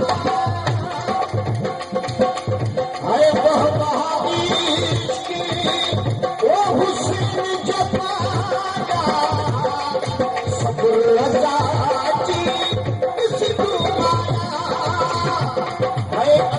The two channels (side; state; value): both; identical; correlation 1.00